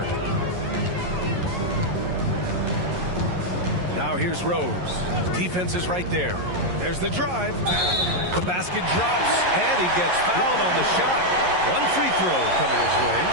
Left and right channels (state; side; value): late; left; 11 ms